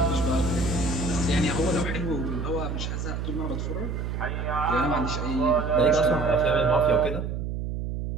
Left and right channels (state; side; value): noise; right; hum, 4 dB below the sound